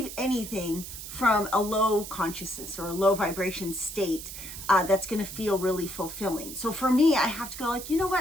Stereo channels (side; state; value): right; noise; hiss, 10 dB below the sound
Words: anything from a low consciousness or a low vibration state that's going to feel really fulfilling. So for me, I have to go like, you know